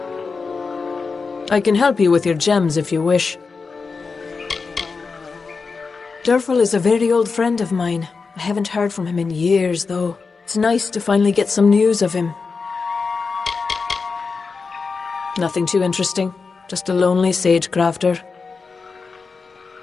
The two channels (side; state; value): right; quieter; 4.7 dB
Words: I can help you with your gems if you wish. Durfel is a very old friend of mine. I haven't heard from him in years, though. It's nice to finally get some news of him. Nothing too interesting. Just a lonely sage crafter.